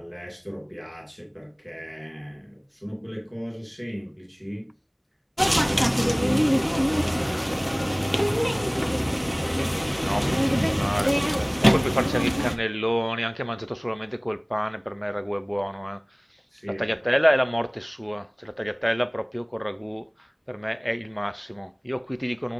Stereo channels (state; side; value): identical; both; correlation 1.00